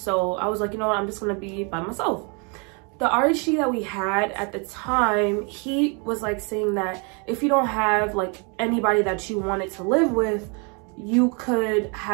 I was like, you know what, I'm just gonna be by myself. The RHG that we had at the time, he was like saying that if you don't have like anybody that you wanted to live with, you could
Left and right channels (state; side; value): quieter; left; 34.4 dB